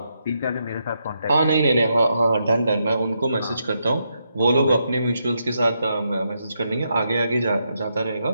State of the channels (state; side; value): inverted; both; correlation -0.81